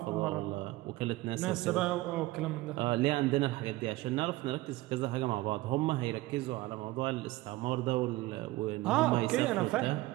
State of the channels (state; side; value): quieter; left; 18.7 dB